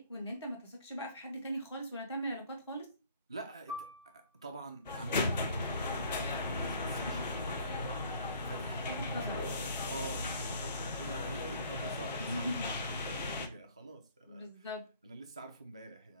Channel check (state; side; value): inverted; both; correlation -0.54